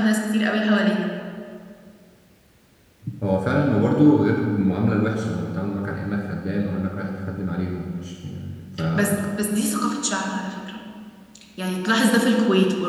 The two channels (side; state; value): both; identical; correlation 1.00